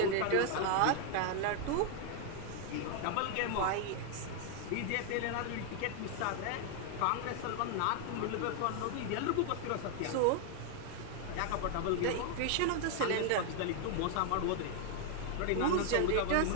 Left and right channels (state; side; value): different; both; correlation 0.00